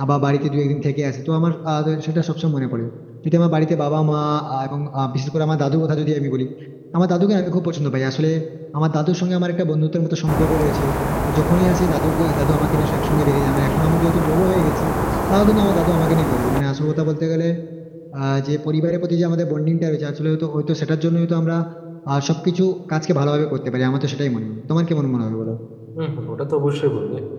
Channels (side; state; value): both; identical; correlation 1.00